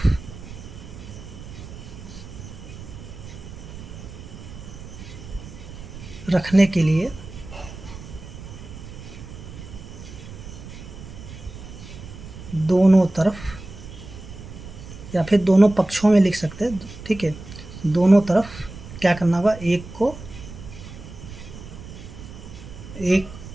रखने के लिए दोनों तरफ, या फिर दोनों पक्षों में लिख सकते हैं, ठीक है। दोनों तरफ क्या करना होगा, एक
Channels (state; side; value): noise; right; rumble, 13 dB below the sound